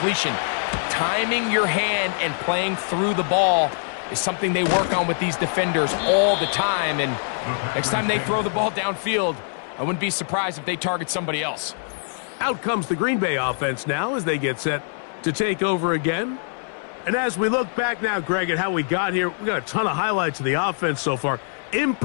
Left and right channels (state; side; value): silent; right; 63 dB below the other